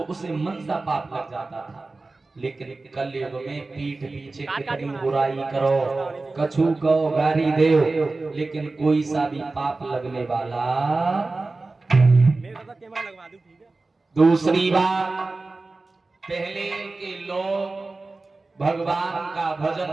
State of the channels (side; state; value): left; quieter; 3.4 dB